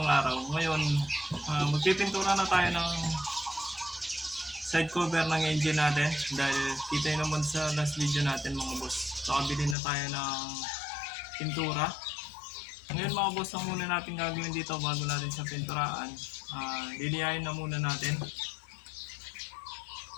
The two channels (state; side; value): drops out; right; at 9.8 s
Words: araw. Ngayon, magpipintura na tayo ng side cover ng engine natin. Dahil kita nyo naman sa last video natin mga boss. Nakabili na tayo ng pintura. Ngayon mga boss, ang muna natin gagawin dito bago natin sa pinturaan, lilihain na muna natin.